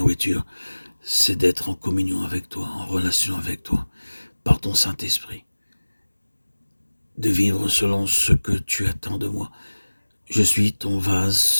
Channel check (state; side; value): inverted; both; correlation -1.00